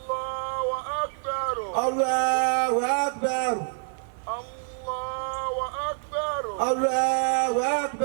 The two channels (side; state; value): left; silent; 55 dB below the other